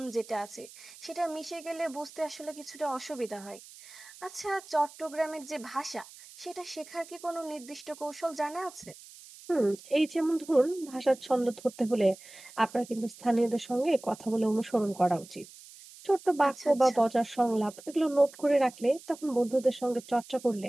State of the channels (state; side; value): noise; right; hiss, 19 dB below the sound